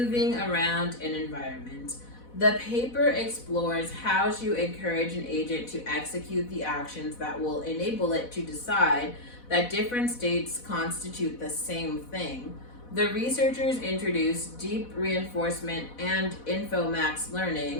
around an environment. The paper explores how to encourage an agent to execute the actions that will enable it to decide that different states constitute the same thing. The researchers introduced deep reinforcement and Infomax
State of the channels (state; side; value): late; right; 4.1 ms